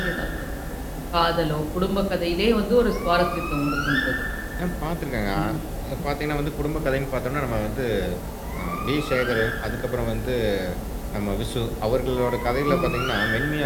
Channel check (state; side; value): identical; both; correlation 1.00